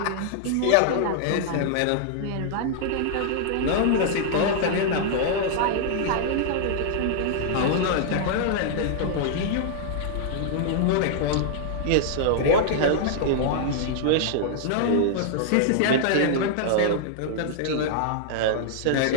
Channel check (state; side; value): different; both; correlation -0.01